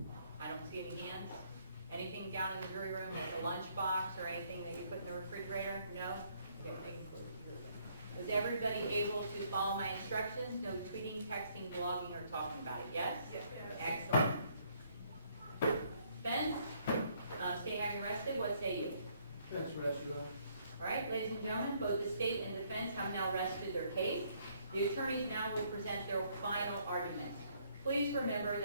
I don't see any hands. Anything down in the jury room, like a lunchbox or anything that you put in the refrigerator? No? Okay, we can close the jury room. Was everybody able to follow my instructions? No tweeting, texting, blogging, or talking about it? Yes? Yes. Excellent. Defense, state having rested, what say you? That's rest, Your Honor. All right, ladies and gentlemen, both the state and defense have now rested their case. The attorneys now will present their final arguments. Please remember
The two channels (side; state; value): both; inverted; correlation -0.67